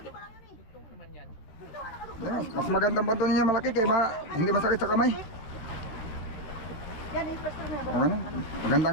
ba lang yan eh. Ito naman yan. Ito, Mas magandang banto niya malaki kaya hindi masakit sa kamay. yan, investor na yan. Okay na. Maganda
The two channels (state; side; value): late; right; 14 ms